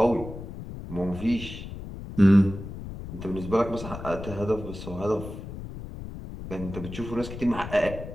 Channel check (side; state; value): left; noise; rumble, 10 dB below the sound